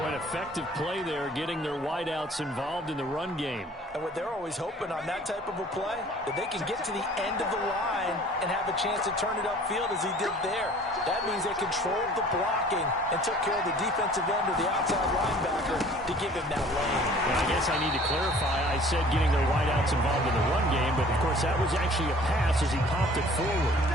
an effective play there, getting their wideouts involved in the run game. And what they're always hoping on that type of a play, that they can get to the end of the line and have a chance to turn it upfield as he did there. That means they controlled the blocking and took care of the defensive end or the outside linebacker to give him that lane. Well, I guess I need to clarify. I said getting their wideouts involved in the run game, but of course that was actually a pass as he popped it forward.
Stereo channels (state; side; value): normal; both; correlation 0.50